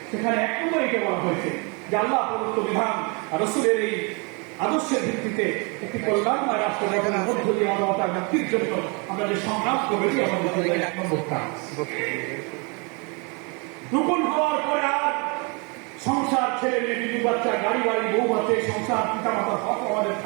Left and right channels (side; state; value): left; quieter; 32.3 dB